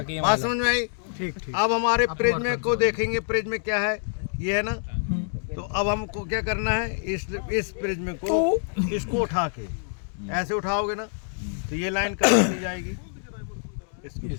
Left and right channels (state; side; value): silent; right; digital silence